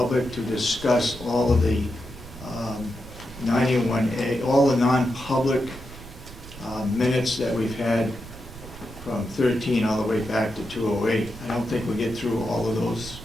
to discuss all of the 91A, all the non-public minutes that we've had from 13 all the way back to 208. I don't think we'll get through all of those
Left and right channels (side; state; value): right; noise; rumble, 15 dB below the sound